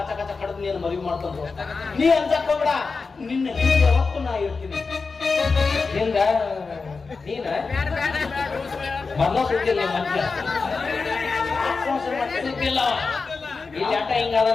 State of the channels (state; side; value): quieter; right; 4.4 dB